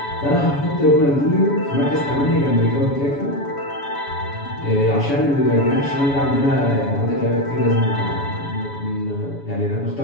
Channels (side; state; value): right; late; 7.1 ms